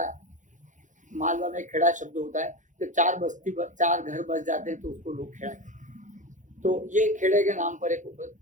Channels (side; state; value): left; late; 0.36 ms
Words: मालवा में खेड़ा शब्द होता है, तो चार घर बस जाते हैं तो उसको लोग खेड़ा कहते हैं। तो ये खेड़े के नाम पर एक उपद